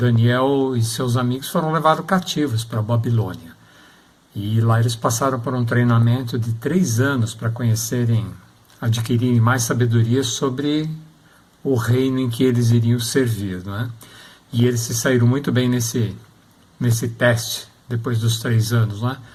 e seus amigos foram levados cativos para a Babilônia. E lá eles passaram por um treinamento de 3 anos para adquirirem mais sabedoria sobre o reino em que eles iriam servir, não é? E eles se saíram muito bem nesse teste, depois dos 3 anos, não é?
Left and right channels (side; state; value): both; identical; correlation 1.00